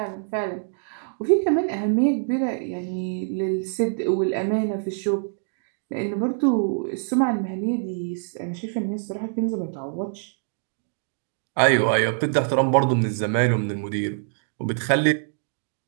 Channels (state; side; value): silent; left; digital silence